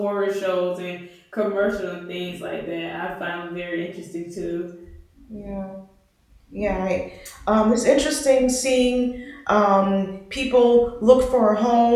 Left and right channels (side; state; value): both; identical; correlation 1.00